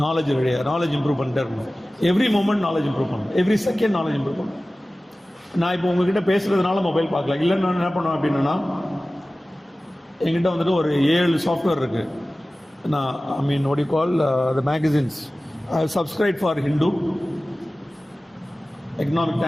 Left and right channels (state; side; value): normal; both; correlation 0.97